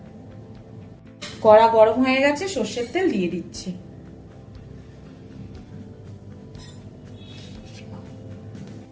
কড়া গরম হয়ে গেছে, সর্ষের তেল দিয়ে দিচ্ছি।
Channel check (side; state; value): both; identical; correlation 1.00